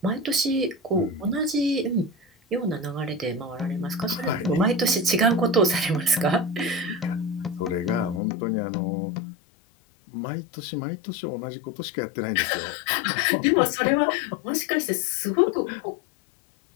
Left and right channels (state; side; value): drops out; right; at 8.2 s